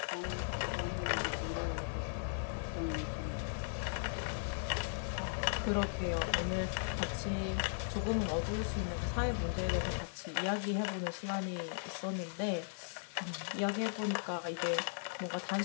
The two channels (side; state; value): right; silent; 53 dB below the other